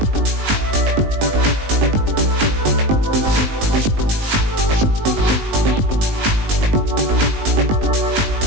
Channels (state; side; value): late; left; 19 ms